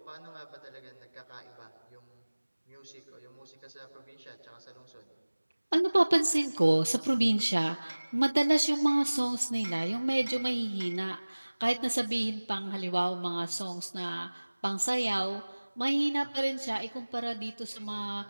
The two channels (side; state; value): both; inverted; correlation -1.00